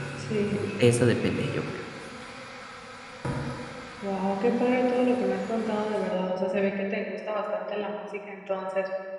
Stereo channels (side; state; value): both; identical; correlation 1.00